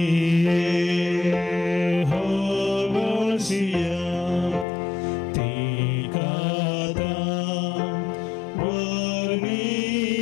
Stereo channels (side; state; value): right; drops out; at 4.7 s